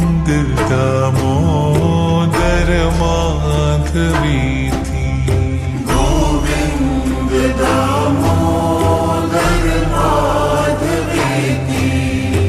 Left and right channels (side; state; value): both; identical; correlation 1.00